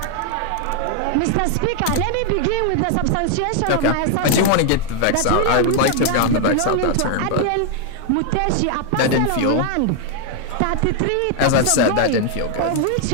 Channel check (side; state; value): both; different; correlation 0.00